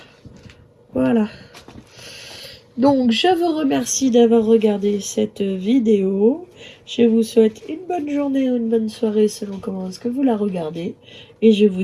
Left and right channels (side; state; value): both; identical; correlation 1.00